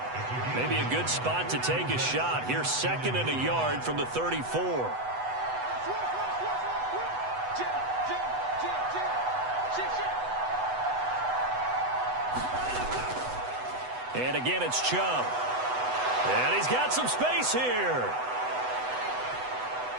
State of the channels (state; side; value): late; left; 8.0 ms